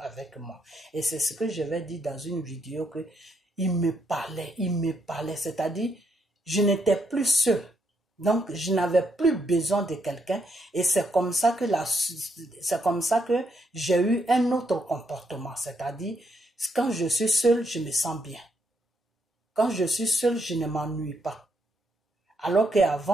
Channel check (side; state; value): both; normal; correlation 0.76